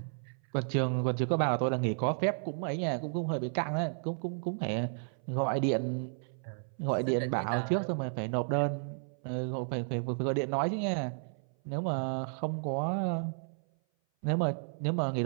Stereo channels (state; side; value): silent; left; 56 dB below the other